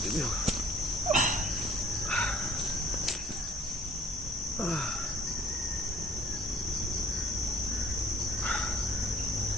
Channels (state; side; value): normal; both; correlation 0.53